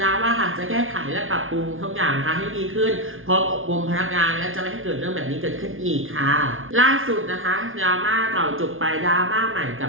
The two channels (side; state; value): left; late; 0.59 ms